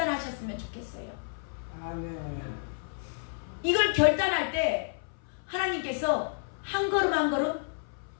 좋겠어요. 아멘. 이걸 결단할 때 하나님께서 한 걸음 한 걸음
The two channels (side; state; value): right; silent; 57 dB below the other